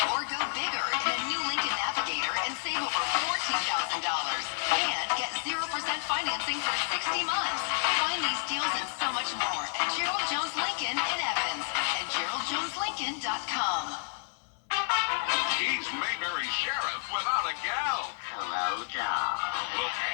Or go bigger in a new Lincoln Navigator and save over $14,000. And get 0% financing for 60 months. Find these deals and so much more at Gerald Jones Lincoln in Evans and GeraldJonesLincoln.com. He's Mayberry Sheriff without a gal. Hello, doll. Will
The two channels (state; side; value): silent; right; 58 dB below the other